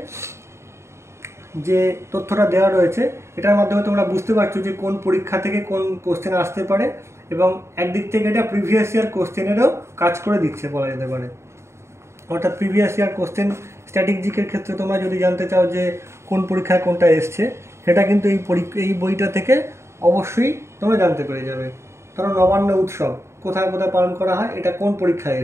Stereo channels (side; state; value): left; late; 0.13 ms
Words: যে তথ্যটা দেওয়া রয়েছে এটার মাধ্যমে তোমরা বুঝতে পারছো যে কোন পরীক্ষা থেকে কোন কোশ্চেন আসতে পারে এবং একদিক থেকে এটা প্রিভিয়াস ইয়ার কোশ্চেনেরও কাজ করে দিচ্ছে বলা যেতে পারে। অর্থাৎ প্রিভিয়াস ইয়ার কোশ্চেন স্ট্র্যাটেজিকের ক্ষেত্রে তোমরা যদি জানতে চাও যে কোন পরীক্ষায় কোনটা এসছে সেটা কিন্তু এই বইটা থেকে অবশ্যই তোমরা জানতে পেরে যাবে। ধরো নবান্ন উৎসব কোথায় কোথায় পালন করা হয়, এটা কোন পরীক্ষায়